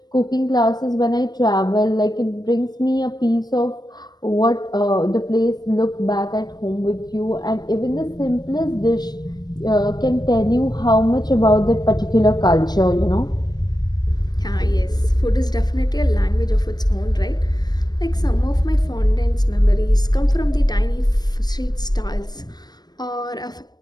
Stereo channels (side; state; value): right; late; 0.19 ms